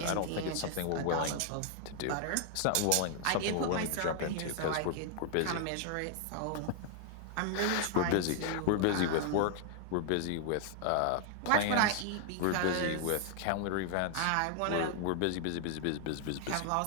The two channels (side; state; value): both; different; correlation 0.00